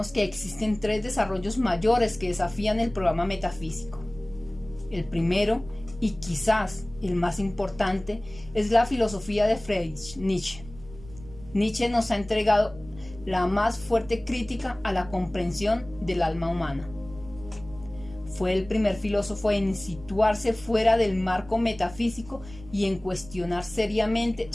que existen 3 desarrollos mayores que desafían el programa metafísico. El primero y quizás el más importante, es la filosofía de Friedrich Nietzsche. Nietzsche nos ha entregado la más fuerte crítica a la comprensión del alma humana. Fue el primer filósofo en situarse fuera del marco metafísico y en cuestionar seriamente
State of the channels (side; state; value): right; noise; rumble, 18 dB below the sound